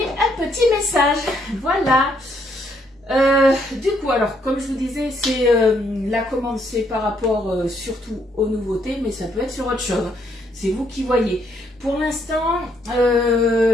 un petit message. Voilà. Du coup, alors, comme je vous disais, c'est la commande, c'est par rapport surtout aux nouveautés, mais ça peut être sur autre chose. C'est vous qui voyez. Pour l'instant,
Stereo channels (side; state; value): both; normal; correlation 0.72